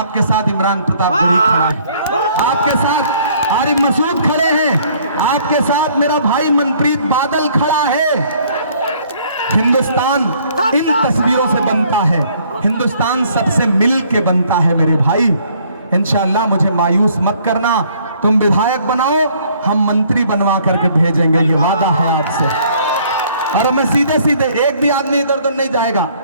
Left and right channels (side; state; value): both; inverted; correlation -0.61